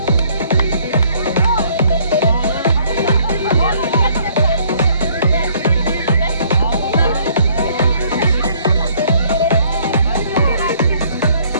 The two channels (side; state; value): both; inverted; correlation -0.61